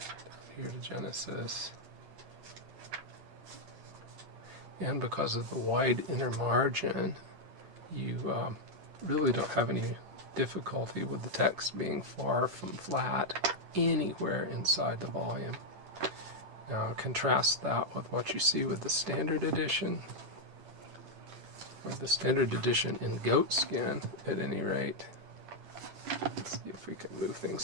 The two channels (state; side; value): late; left; 10 ms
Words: here to Genesis. And because of the wide inner margin, you really don't have any difficulty with the text being far from flat anywhere inside the volume. Now contrast that with what you see with the standard edition, or the standard edition in goat skin at any rate. Let's see if we can move